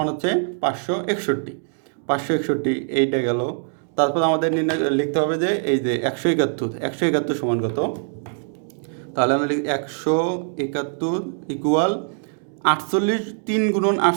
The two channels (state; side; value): silent; left; 58 dB below the other